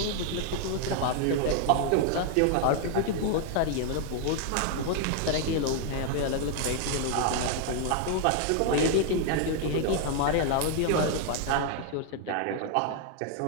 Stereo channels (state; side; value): different; both; correlation 0.00